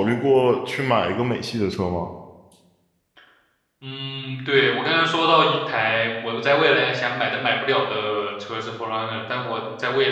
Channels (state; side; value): identical; both; correlation 1.00